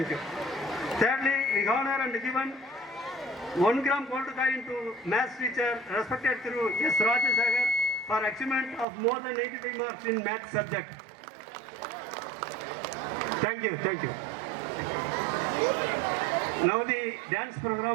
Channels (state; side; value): drops out; left; at 8.8 s